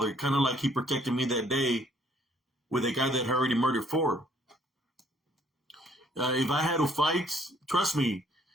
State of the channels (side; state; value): both; normal; correlation 0.63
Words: Kind of like He protected me that day with a guy that had already murdered 4. If I had to fight, trust me,